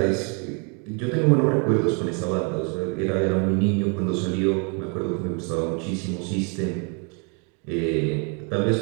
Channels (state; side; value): quieter; left; 34.7 dB